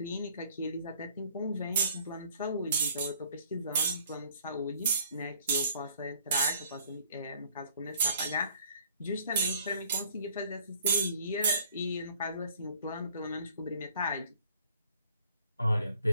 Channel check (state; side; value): inverted; both; correlation -0.56